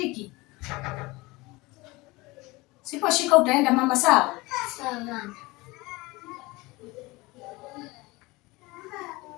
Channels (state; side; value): quieter; right; 22.5 dB